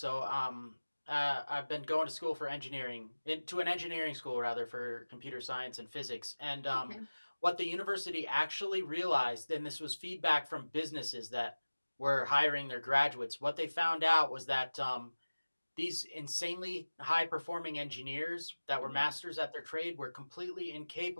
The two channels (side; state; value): both; inverted; correlation -1.00